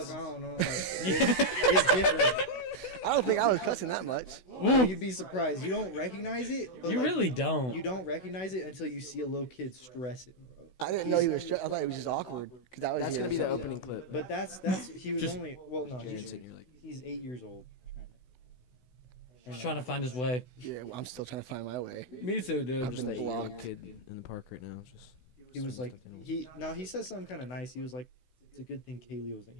fuck, I don't know. Like, it's different. I don't think I was cussing that much. Ooh, You'd be surprised. You don't recognize it. But you like, really don't. You don't recognize it until you see a little kid stressing, bro. I didn't know he was. I thought he was just awkward because I was. That's here gonna be the so- opening clip. But that's he was Just- only well no James he's, and you're like, he's 8 years old. He's trying to find his way. Yeah, well, I'm still trying to find my way. Me too, dude. I'm just that blocked. young kid in the park right now. Just He was like he. he said something kind of nice. He was like, it's a good thing Kaylee wasn't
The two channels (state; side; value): late; right; 16 ms